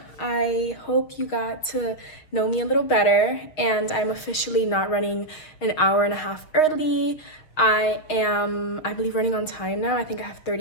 I hope you got to know me a little better, and I'm officially not running an hour and a half early. I believe, running on time now. I think I have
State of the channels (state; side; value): late; right; 6.5 ms